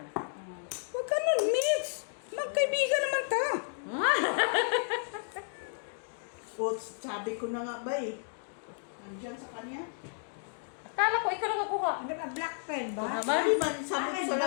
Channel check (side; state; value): right; silent; digital silence